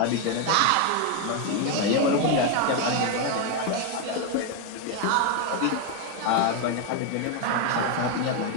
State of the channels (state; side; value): different; both; correlation 0.01